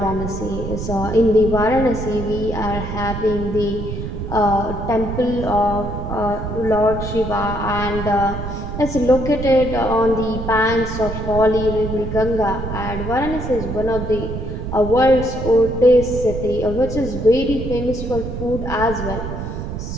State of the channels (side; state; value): right; noise; rumble, 6 dB below the sound